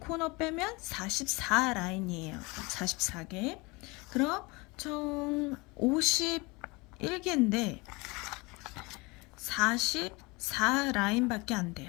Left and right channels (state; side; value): quieter; right; 25.6 dB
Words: 빼면 44 라인이에요. 44개. 그럼 총 51개인데 44 라인밖에 안